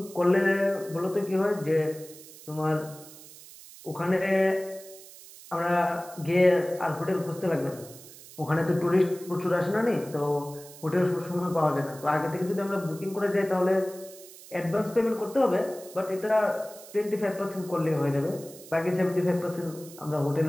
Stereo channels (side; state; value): right; noise; hiss, 18 dB below the sound